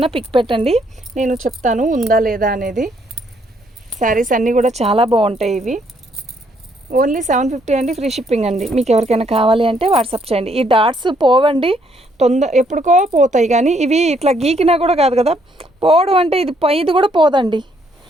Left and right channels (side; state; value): both; normal; correlation 0.70